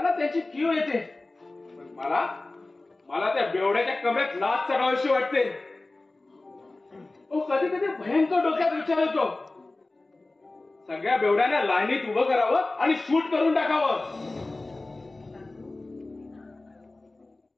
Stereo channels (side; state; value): right; quieter; 3.1 dB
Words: त्याची कीव येते. पण मला त्या बेवड्याच्या कमरेत लाच चढावीशी वाटते. कधी कधी भयंकर डोक्यात विचार येतो, सगळ्या बेवड्यांना लाईनीत उभं करावं आणि शूट करून टाकावं.